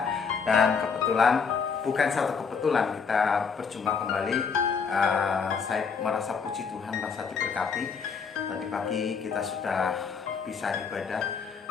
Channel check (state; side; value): quieter; right; 5.8 dB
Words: Dan kebetulan, bukan satu kebetulan kita berjumpa kembali. Saya merasa puji Tuhan, merasa diberkati. Tadi pagi kita sudah bisa ibadah